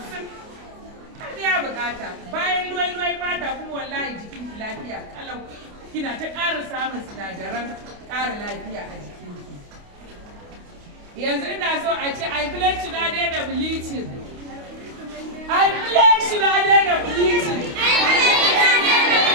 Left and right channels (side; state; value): left; late; 28 ms